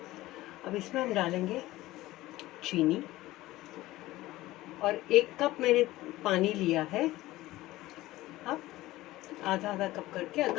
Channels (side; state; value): right; quieter; 17.3 dB